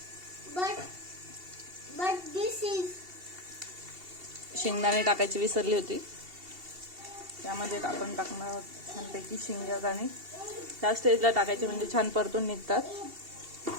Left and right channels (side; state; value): left; late; 2.7 ms